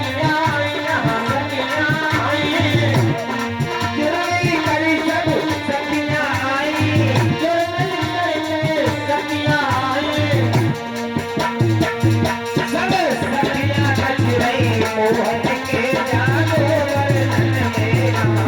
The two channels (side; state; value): both; identical; correlation 1.00